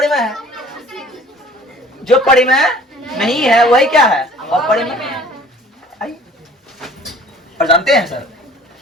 है, जो परिमेय नहीं है वही क्या है? अपरिमेय। और जानते हैं सर,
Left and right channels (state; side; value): normal; both; correlation 0.50